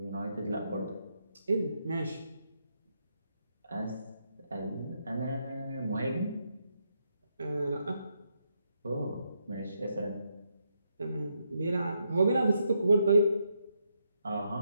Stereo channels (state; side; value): inverted; both; correlation -0.79